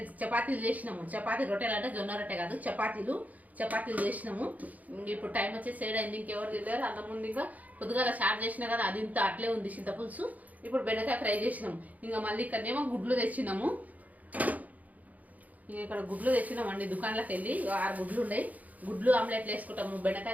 చపాతీలు చేసినాము. రొట్టెలు అంటే జొన్న రొట్టె కాదు, చపాతీలు చేసినాము. ఇప్పుడు టైం వచ్చేసి 7 అయింది. ఇంకెవరు తిన్నారు? అన్నం ఉంది. ఇంకా పొద్దుగాల స్టార్ట్ చేసినా కదా, అది ఇంత అట్లే ఉంది చింతపులుసు. ఇప్పుడు బెండకాయ ఫ్రై చేసినాము. ఇంకా మళ్ళీ ఇక్కడనేమో గుడ్లు తెచ్చినాము. ఇక్కడ గుడ్లు తెచ్చినామండి దుకాణంలోకి వెళ్ళి. 6 గుడ్లు ఉన్నాయి. గుడ్లు ఆమ్లెట్లు వేసుకుంటాము.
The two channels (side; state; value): left; late; 0.077 ms